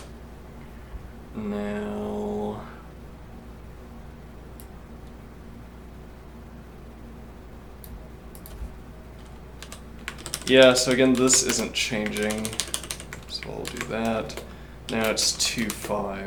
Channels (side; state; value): both; identical; correlation 1.00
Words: Now... Yeah, so again, this isn't changing. So I'll do that. Now it's 2, 5.